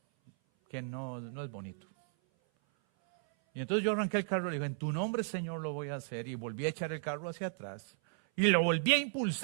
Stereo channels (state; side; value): silent; left; 55 dB below the other